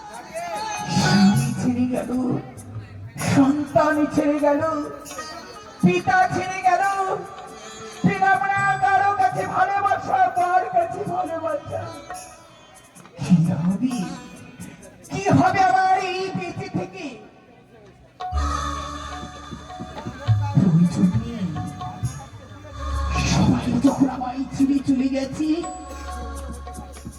স্বামী ছেড়ে গেল, সন্তান ছেড়ে গেল, পিতা ছেড়ে গেল। পেলাম না কারো কাছে ভালোবাসা, কার কাছে ভালোবাসা। কি হবে, কি হবে আমার এই বেঁচে থেকে? প্রয়োজন নেই। সবাই যখন আমায় ছেড়ে চলে গেছি,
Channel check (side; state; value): both; identical; correlation 1.00